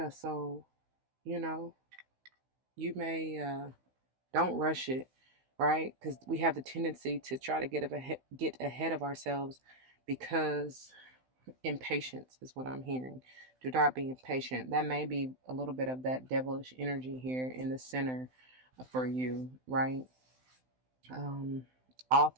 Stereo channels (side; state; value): left; late; 16 ms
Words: so, you know, you may don't rush it, right? Because we have the tendency to try to get ahead of ourselves because impatience is what I'm hearing. Do not be impatient. That may be a little bit of that devilish energy here in the center for you, right? Um, all